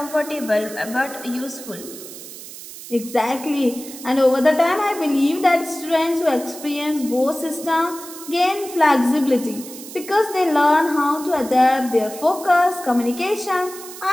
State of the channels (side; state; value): right; noise; hiss, 14 dB below the sound